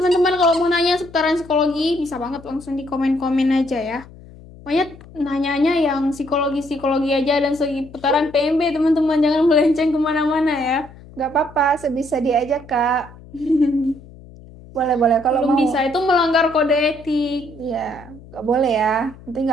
kalau mau nanya seputaran psikologi, bisa banget langsung di komen-komen aja ya. Pokoknya nanyanya yang psikologi-psikologi aja dan seputaran PMB teman-teman, jangan melenceng kemana-mana ya. Gak apa-apa, sebisa dia aja Kak. Boleh kalau Belum mau. bisa, itu melanggar kode etik. Iya, nggak boleh ya. Nanti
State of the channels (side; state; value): left; noise; hum, 20 dB below the sound